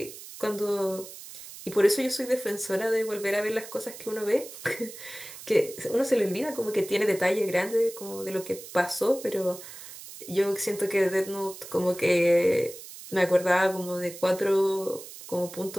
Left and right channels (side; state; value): right; noise; hiss, 14 dB below the sound